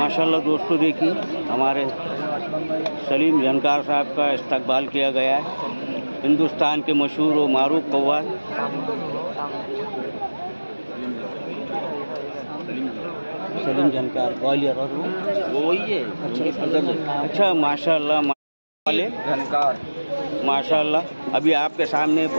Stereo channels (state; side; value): inverted; both; correlation -1.00